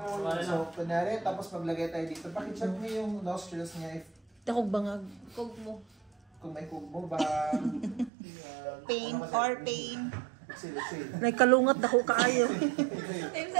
So, kunwari, tapos maglagay tayo dito. Pakicheck mo yung nostrils niya if Takog bangag. Kog mo. kung may kubo ba. Pain or pain. Exhale. Nay kalungat dako kaayo.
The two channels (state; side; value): drops out; left; at 8.1 s